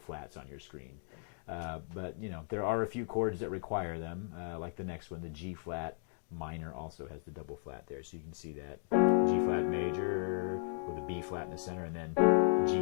flats on your screen. But you know, there are a few chords that require them, like the next one, the G flat minor also has the double flat there. So you can see that G flat major with a B flat in the center, and then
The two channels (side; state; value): right; silent; digital silence